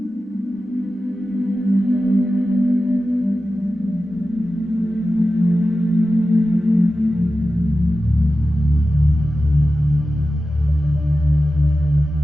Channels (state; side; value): normal; both; correlation 0.93